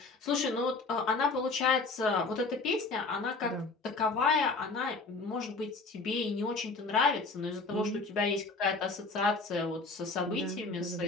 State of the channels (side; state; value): right; quieter; 3.8 dB